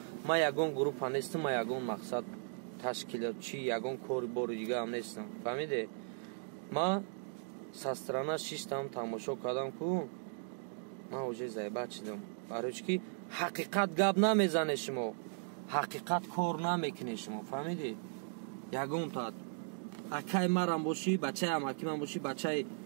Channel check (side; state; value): left; silent; digital silence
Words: Ма ягон группа нестам, ма ягон мақсад ташкилотчӣ, ягон кори бори дигаам нестам. Фаҳмиде? Ма са страна шиштам, тамошо кардам ку ман уже зайбат шудам. Барои чӣ ки ҳақиқат гап намезане шумо, ҳақиқат кор намекуне шумо. Фаҳмиде? Ягон тат акай марам бошӣ, бачаи амаки ман бошӣ, бачаи